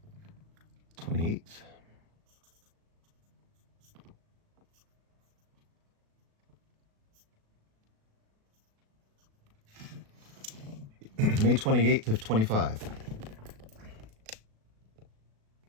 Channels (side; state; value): left; late; 37 ms